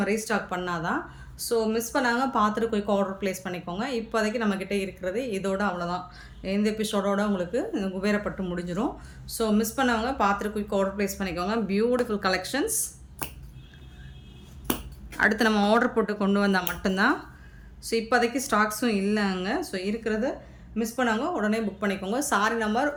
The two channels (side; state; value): both; identical; correlation 1.00